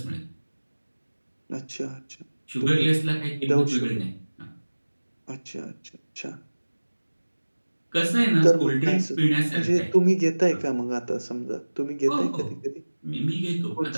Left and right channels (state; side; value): inverted; both; correlation -1.00